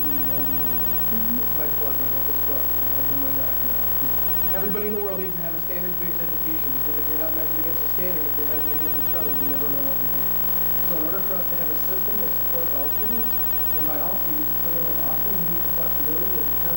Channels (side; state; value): right; quieter; 7.9 dB